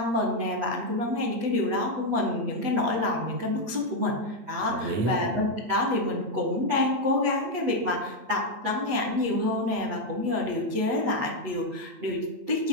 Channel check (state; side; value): late; left; 8.2 ms